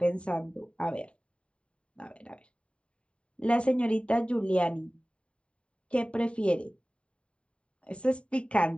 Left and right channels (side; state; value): right; late; 0.059 ms